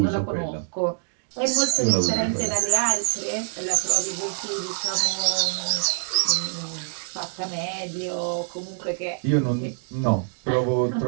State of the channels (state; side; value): silent; left; digital silence